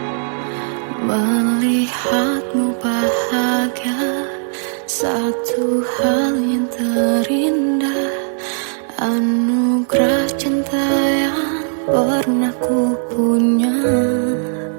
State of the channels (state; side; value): silent; left; 61 dB below the other